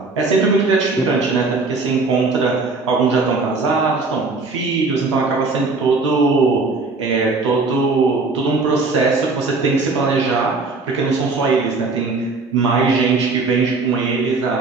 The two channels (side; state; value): left; quieter; 3.8 dB